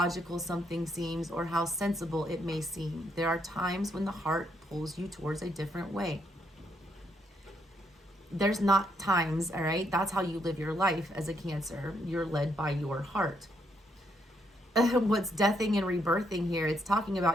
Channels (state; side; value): normal; both; correlation 0.75